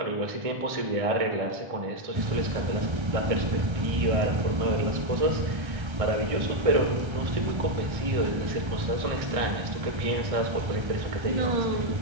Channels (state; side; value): late; left; 1.3 ms